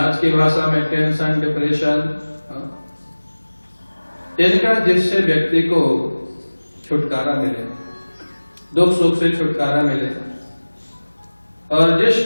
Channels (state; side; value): inverted; both; correlation -1.00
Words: की भाषा में टेंशन, डिप्रेशन, इनका जिससे व्यक्ति को छुटकारा मिले, दुख सुख से छुटकारा मिले। और जिस